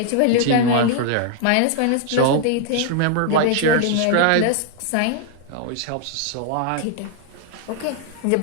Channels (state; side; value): different; both; correlation 0.00